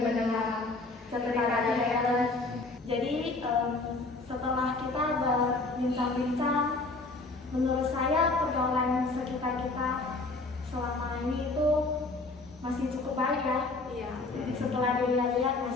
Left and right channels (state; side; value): quieter; right; 3.4 dB